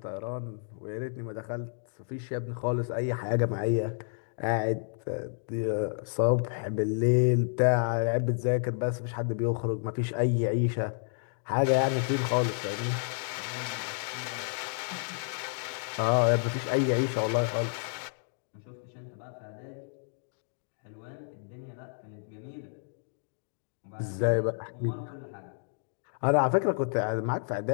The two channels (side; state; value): right; silent; digital silence